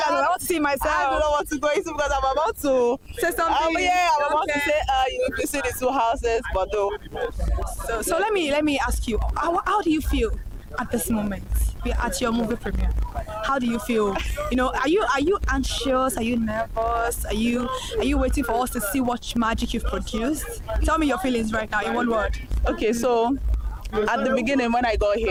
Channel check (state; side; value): identical; both; correlation 1.00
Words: I want to see myself. I don't know what to go into because I'm about to say something. I'm about to say you see the two houses, but no. So let me ask you, how do you feel at this moment? At your movie premiere, how do you feel? Are you anxious? Are you nervous? Are you waiting for us to see what magic you've produced? Tell me your feelings right now in one word. Okay, so at the beginning when I got